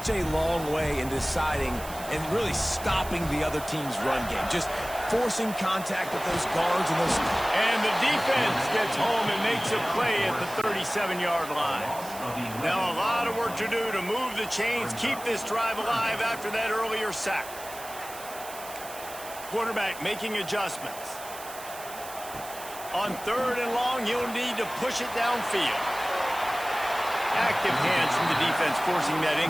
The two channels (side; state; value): right; noise; hiss, 14 dB below the sound